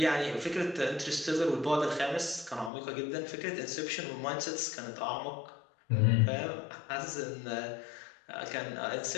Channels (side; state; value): right; drops out; at 2.7 s